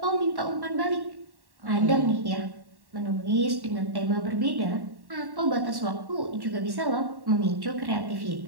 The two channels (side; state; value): left; late; 1.1 ms